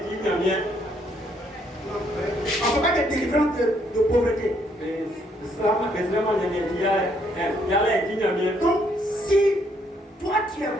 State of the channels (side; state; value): both; normal; correlation 0.70